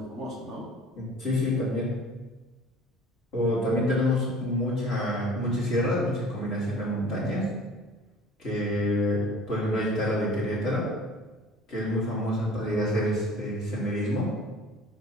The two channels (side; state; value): both; normal; correlation 0.46